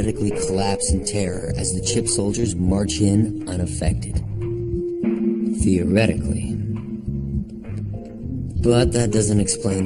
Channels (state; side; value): identical; both; correlation 1.00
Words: collapse in terror as the chip soldiers march in unaffected. Theoretically. But that doesn't